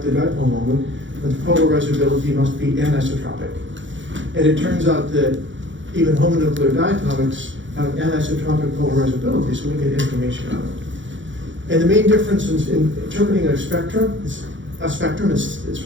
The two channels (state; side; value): late; left; 0.55 ms